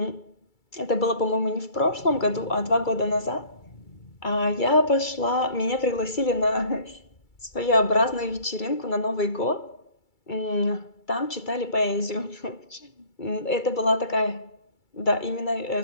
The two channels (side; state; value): right; late; 2.3 ms